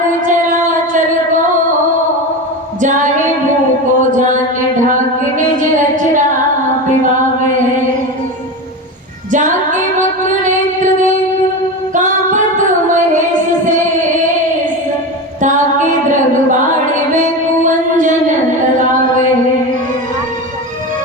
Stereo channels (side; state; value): both; normal; correlation 0.23